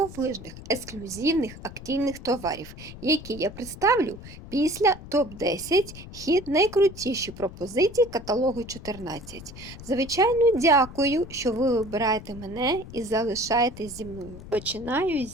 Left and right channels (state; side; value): noise; left; rumble, 15 dB below the sound